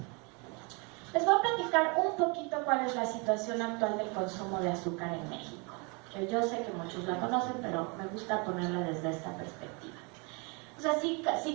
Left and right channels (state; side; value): quieter; left; 31.7 dB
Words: les voy a platicar un poquito cuál es la situación actual del consumo de azúcar en México. Que yo sé que muchos la conocen, pero me gusta ponerla desde esta perspectiva. O sea,